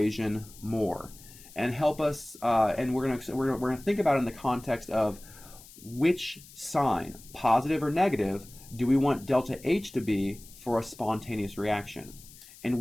more and help us, and we're going to think about it in the context of which sign, positive or negative, do we want delta H to be for a spontaneous reaction? And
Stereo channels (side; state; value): left; noise; hiss, 20 dB below the sound